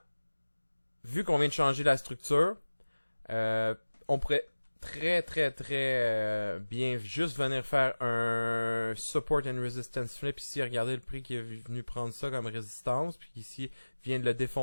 vu qu'on vient de changer la structure, on pourrait très bien juste venir faire un support and resistance flip ici. Regardez le prix qui est venu prendre ça comme résistance, puis ici vient de le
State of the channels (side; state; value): both; inverted; correlation -1.00